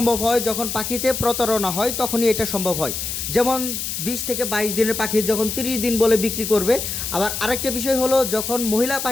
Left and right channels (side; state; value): left; noise; hiss, 4 dB below the sound